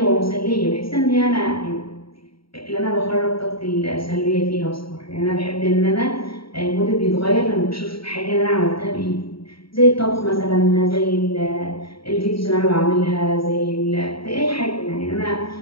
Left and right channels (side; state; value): right; late; 0.75 ms